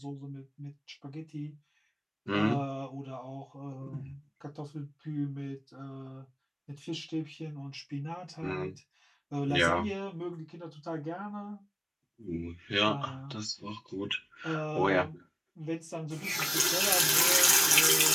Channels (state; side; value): identical; both; correlation 1.00